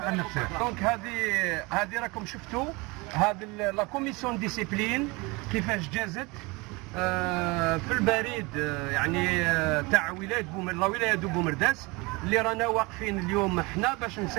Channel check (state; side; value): quieter; left; 25.6 dB